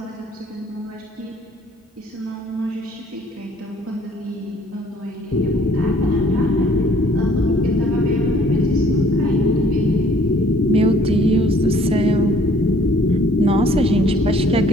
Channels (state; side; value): normal; both; correlation 0.58